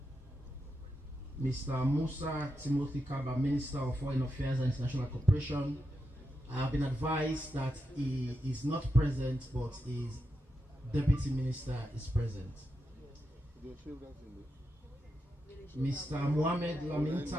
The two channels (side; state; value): both; normal; correlation 0.86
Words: Mr. Musa Timothy Kaba, Minister of Foreign Affairs and International Cooperation. I have been advised that he is not present, but his Deputy Minister is present. Mr. Mohamed Lamin